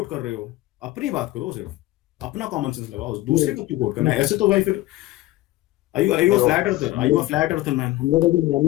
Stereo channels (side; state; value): right; quieter; 17.3 dB